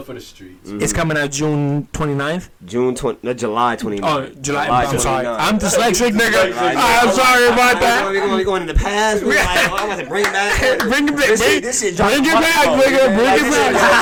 for the Streets. It's coming out June 29th. July 29th. Oh, July. I'm sorry. I'm dyslexic, nigga. I'm sorry about that. We're going in the past. I'm going to bring it back. Bring it back. Bring it back, nigga. Bring it back.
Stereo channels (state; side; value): identical; both; correlation 1.00